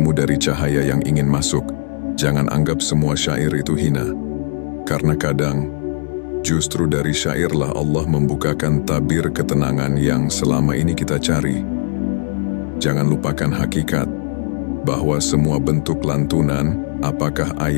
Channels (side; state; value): right; silent; digital silence